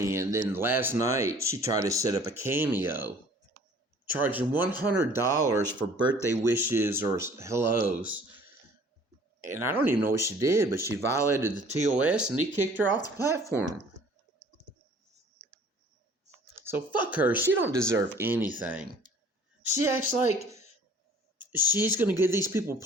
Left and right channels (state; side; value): normal; both; correlation 0.52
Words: and then last night she tried to set up a Cameo, charging $100 for birthday wishes or hellos. And I don't even know what she did, but she violated the TOS and he kicked her off the platform. So fuck her. She don't deserve anything. She acts like she's going to give these people